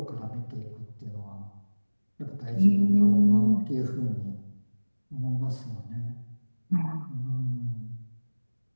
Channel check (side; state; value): both; inverted; correlation -1.00